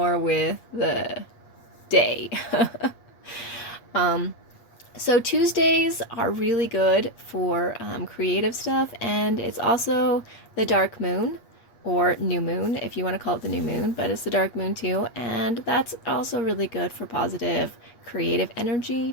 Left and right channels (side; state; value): right; late; 8.4 ms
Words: with the day. So Tuesdays are really good for creative stuff, and it's also the dark moon. or new moon, if you want to call it the new moon, but it's the dark moon too. And that's also really good for positive creative